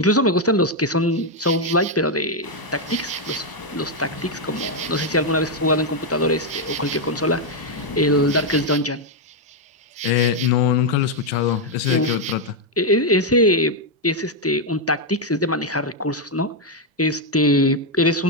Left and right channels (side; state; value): both; normal; correlation 0.01